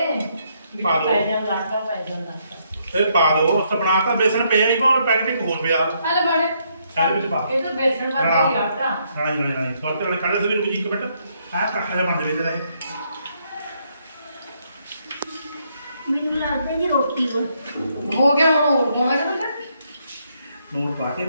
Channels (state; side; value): inverted; both; correlation -0.73